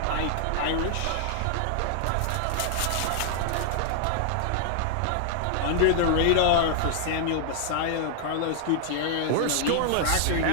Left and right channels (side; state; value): both; different; correlation 0.00